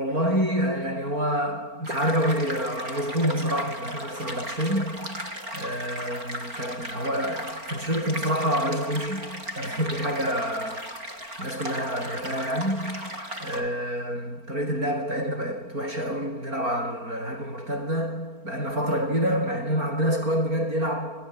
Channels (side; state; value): left; late; 4.4 ms